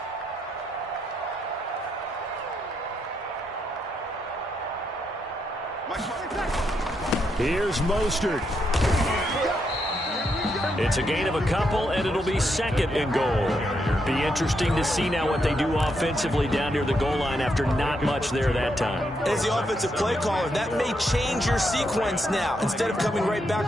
Here's Mostert. It's a gain of a couple, and it'll be 2nd and goal. Be interesting to see now what they do offensively down near the goal line after not much there that time. As the offensive play caller, that may change your sequence now. Instead of coming right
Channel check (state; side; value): normal; both; correlation 0.79